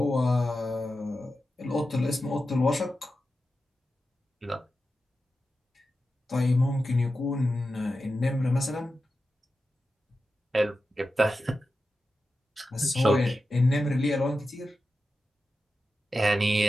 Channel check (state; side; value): normal; both; correlation 0.91